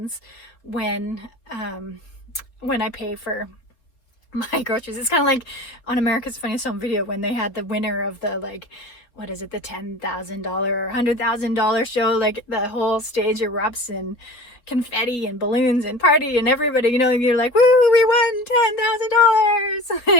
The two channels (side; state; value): right; late; 3.9 ms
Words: when I pay for my groceries. It's kind of like on America's Funniest Home Video when they had the winner of the, like, what is it, the $10,000 or $100,000 show. Like, the whole stage erupts in confetti and balloons and party, and everybody, and you're like, woo, we won